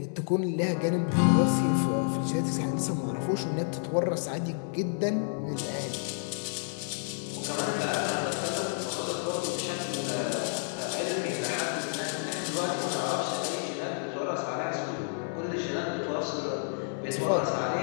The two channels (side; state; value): right; silent; 58 dB below the other